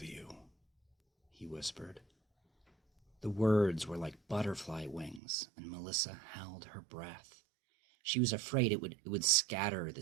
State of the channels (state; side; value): drops out; left; at 5.2 s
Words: you, he whispered. The words were like butterfly wings, and Melissa held her breath. She was afraid it would scatter the